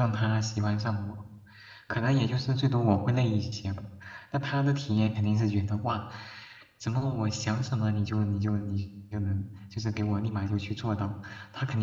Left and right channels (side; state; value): both; identical; correlation 1.00